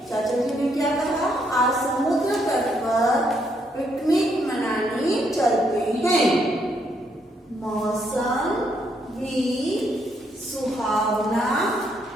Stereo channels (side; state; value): both; normal; correlation 0.74